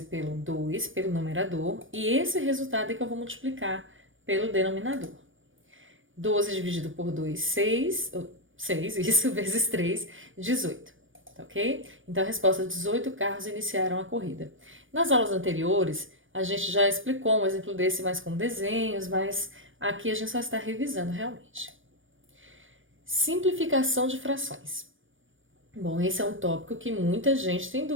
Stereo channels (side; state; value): left; late; 0.57 ms